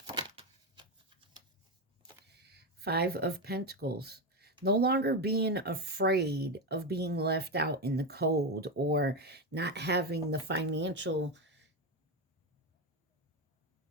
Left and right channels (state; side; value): normal; both; correlation 0.12